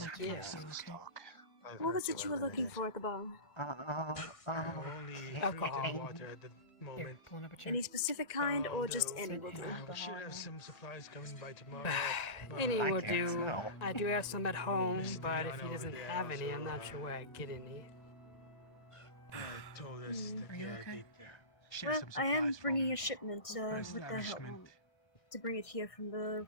Yeah. okay? What was it you were looking for at the bar? Only drinking water at the moment. Here, pulling up a chair. Any specific kind, or just any will do? We should have some supplies coming by tomorrow. Any but- will do. I do have some at home, but if he doesn't have any, I'm not sure where I'd get any. Told us that Are you yeah, okay? they'd share Well, some I am supplies from bringing a shipment our with their help establishment. to bring it here from the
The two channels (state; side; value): late; right; 2.0 ms